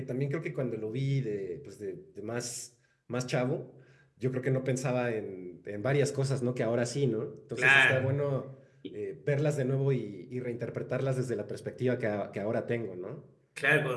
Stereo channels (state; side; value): identical; both; correlation 1.00